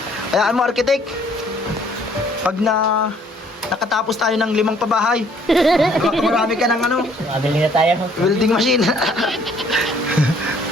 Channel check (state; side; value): normal; both; correlation 0.61